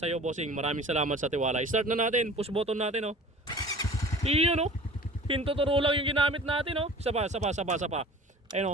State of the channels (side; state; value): both; normal; correlation 0.44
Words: iyo Bossing, maraming salamat sa tiwala. Start na natin, push button natin o. Yun o, hintuturo lang yung ginamit natin o. Isa pa. Ayun